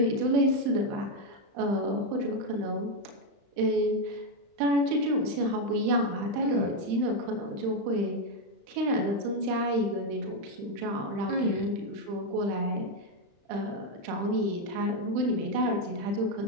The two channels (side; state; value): left; late; 35 ms